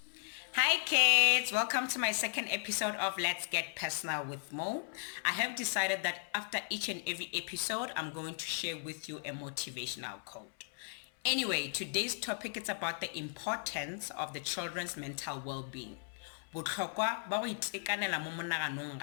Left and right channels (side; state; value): right; silent; 54 dB below the other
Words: Hi kids, welcome to my second episode of Let's Get Personal with Mo. I have decided that after each and every episode, I'm going to share with you a motivational quote. Anyway, today's topic is about the importance of the children's mental well-being. Botlhokwa ba go itekanela mo monaganong